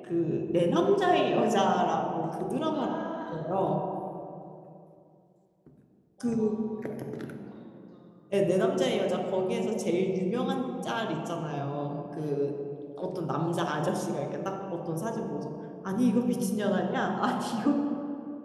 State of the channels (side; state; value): both; identical; correlation 1.00